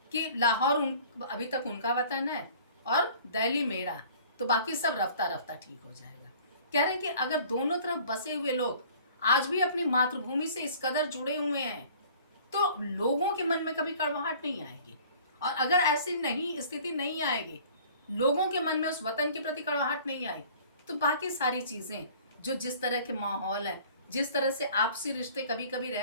कि लाहौर अभी तक उनका वतन है और दिल्ली मेरा, तो बाकी सब रफ्ता रफ्ता ठीक हो जाएगा। कह रहे हैं कि अगर दोनों तरफ बसे हुए लोग आज भी अपनी मातृभूमि से इस कदर जुड़े हुए हैं तो लोगों के मन में कभी कड़वाहट नहीं आएगी। और अगर ऐसी नहीं स्थिति नहीं आएगी, लोगों के मन में उस वतन के प्रति कड़वाहट नहीं आई, तो बाकी सारी चीज़ें जो जिस तरह के माहौल है, जिस तरह से आपसी रिश्ते कभी कभी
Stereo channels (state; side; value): inverted; both; correlation -0.50